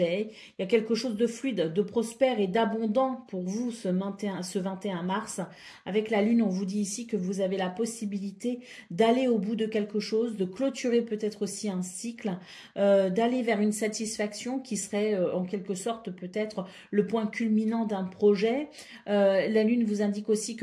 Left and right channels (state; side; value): identical; both; correlation 1.00